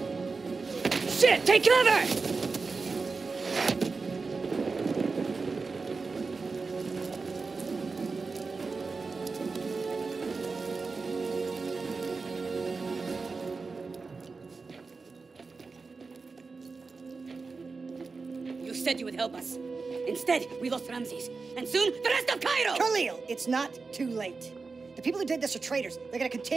Shit! Take cover! You said you would help us. Instead, we lost Ramses. And soon, the rest of Cairo! Khalil, it's not too late. The people who did this are traitors. They're gonna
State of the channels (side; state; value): left; quieter; 4.3 dB